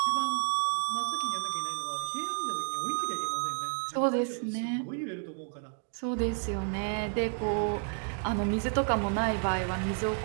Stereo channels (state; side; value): silent; left; 57 dB below the other